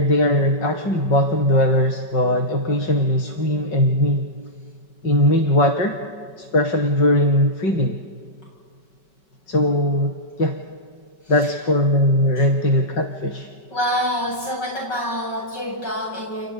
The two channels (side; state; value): right; late; 5.3 ms